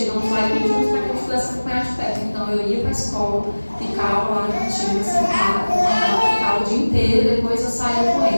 lá e pedimos para que eu pudesse acompanhar de perto. Então eu ia para a escola, ficava lá na cantina, sentada, ficava o dia inteiro e depois eu saía com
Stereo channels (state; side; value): inverted; both; correlation -1.00